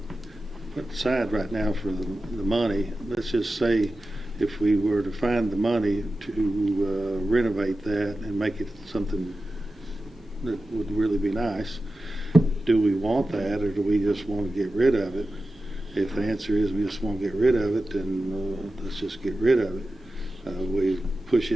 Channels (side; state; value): both; normal; correlation 0.93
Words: put aside right now for the money, let's just say if we were to find the money to renovate that and make it something that would really be nice, do we want that, or do we just want to get rid of it? If the answer is we just want to get rid of it, then let's just get rid of it. We push